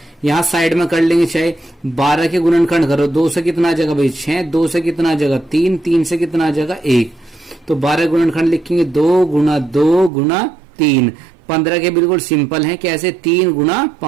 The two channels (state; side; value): drops out; left; at 10.1 s